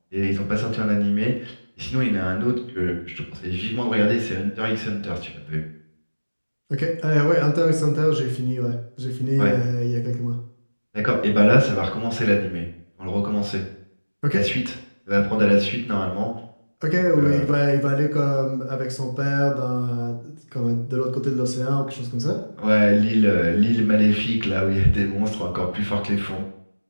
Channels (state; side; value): inverted; both; correlation -1.00